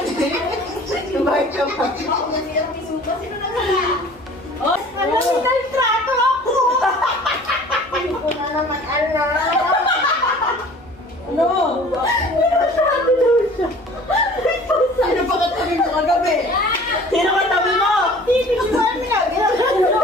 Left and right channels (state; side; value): normal; both; correlation 0.47